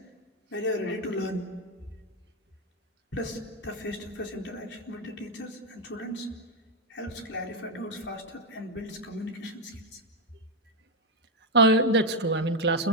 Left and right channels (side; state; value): both; normal; correlation 0.04